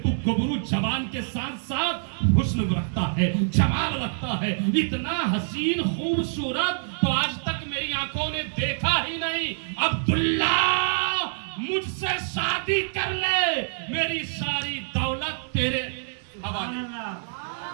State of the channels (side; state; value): left; silent; digital silence